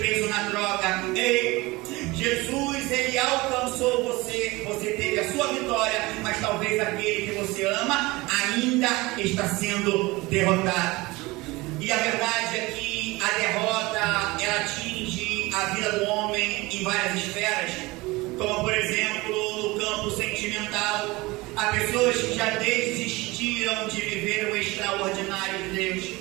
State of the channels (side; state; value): left; quieter; 22.0 dB